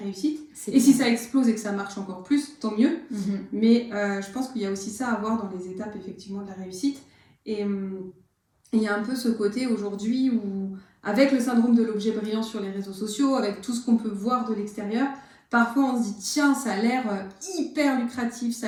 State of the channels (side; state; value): both; identical; correlation 1.00